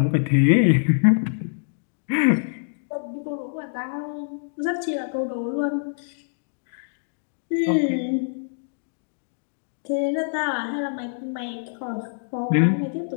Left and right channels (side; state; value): right; silent; digital silence